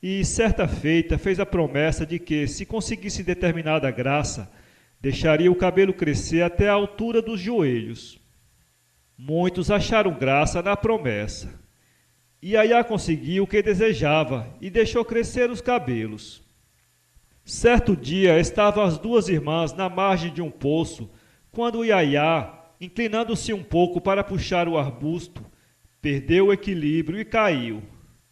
certa feita, fez a promessa de que, se conseguisse determinada graça, deixaria o cabelo crescer até a altura dos joelhos. Muitos acharam graça na promessa. Iaiá conseguiu o que desejava e deixou crescer os cabelos. Certo dia estavam as 2 irmãs na margem de um poço, quando Iaiá, inclinando-se um pouco para puxar o arbusto, perdeu o equilíbrio e caiu.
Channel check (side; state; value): both; identical; correlation 1.00